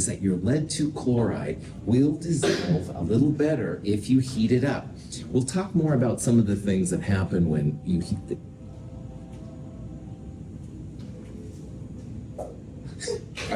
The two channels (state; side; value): identical; both; correlation 1.00